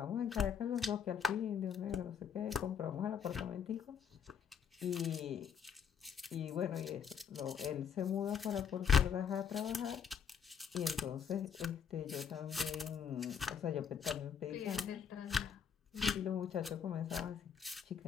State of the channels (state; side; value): quieter; right; 7.5 dB